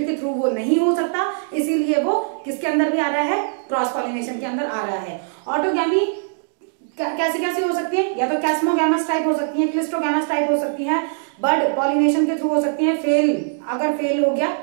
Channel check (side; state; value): left; silent; digital silence